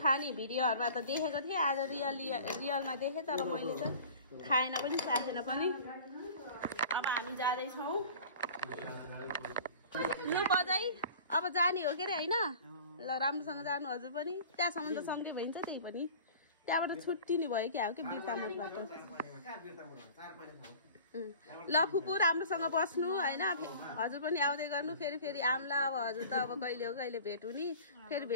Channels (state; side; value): inverted; both; correlation -0.43